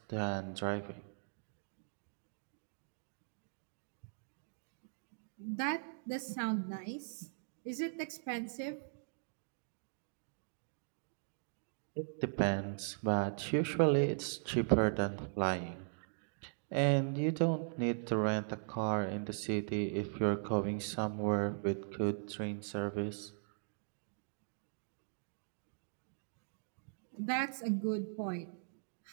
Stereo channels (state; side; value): silent; left; digital silence